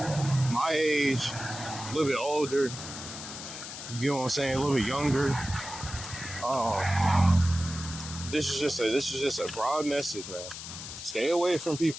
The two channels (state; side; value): noise; left; hiss, 10 dB below the sound